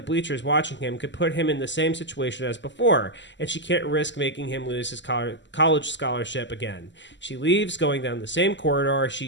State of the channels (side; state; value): right; late; 0.53 ms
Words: bleachers watching him could put him in the same situation as before, and she can't risk making him lose his college scholarship again. She leaves, going down the same corridor she